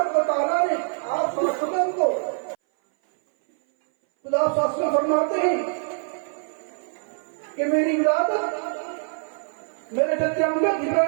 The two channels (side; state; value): left; silent; 60 dB below the other